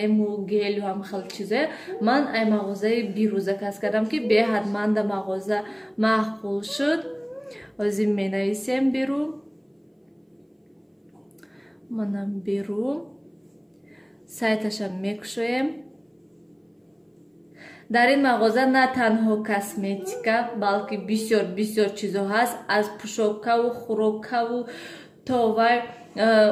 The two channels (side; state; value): both; identical; correlation 1.00